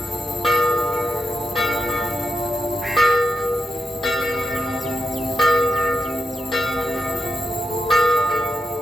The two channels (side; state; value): both; normal; correlation 0.85